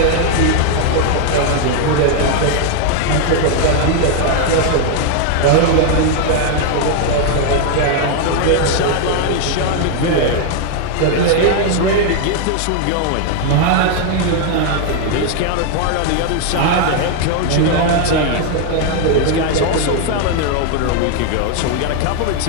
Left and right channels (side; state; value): both; different; correlation 0.00